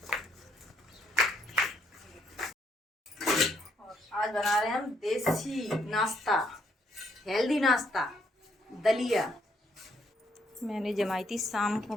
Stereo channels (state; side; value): normal; both; correlation 0.71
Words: और आज बना रहे हैं हम देसी नाश्ता, हेल्दी नाश्ता, दलिया। मैंने जमाई थी शाम को